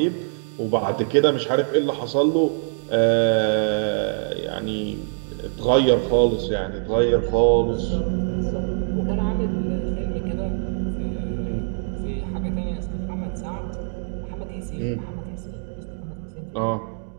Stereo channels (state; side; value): silent; left; digital silence